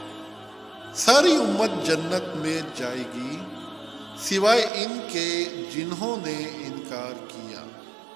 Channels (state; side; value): drops out; left; at 4.7 s